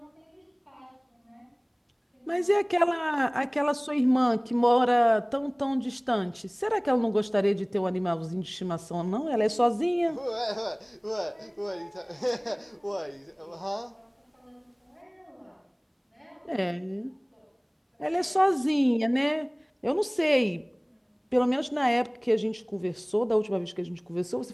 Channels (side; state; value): both; identical; correlation 1.00